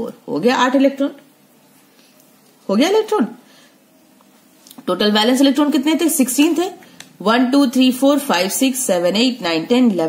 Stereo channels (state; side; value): identical; both; correlation 1.00